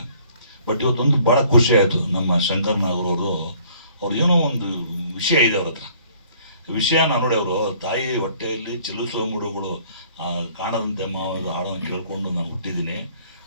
ಬಟ್ ಇವತ್ತೊಂದು ಭಾಳ ಖುಷಿ ಆಯಿತು. ನಮ್ಮ ಶಂಕರ್ ನಾಗರವರು ಅವ್ರು ಏನೋ ಒಂದು ವಿಷಯ ಇದೆ ಅವ್ರ ಹತ್ರ. ವಿಷಯನ ನೋಡಿ, ಅವರು ತಾಯಿ ಹೊಟ್ಟೆಯಲ್ಲಿ ಚಲಿಸುವ ಮೂಡುಗಳು ಕಾಣದಂತೆ ಮಾವದ ಹಾಡನ್ನು ಕೇಳ್ಕೊಂಡು ನಾನು ಹುಟ್ಟಿದ್ದೀನಿ.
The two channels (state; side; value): inverted; both; correlation -0.58